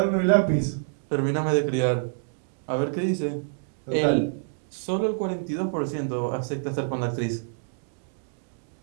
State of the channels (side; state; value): left; silent; digital silence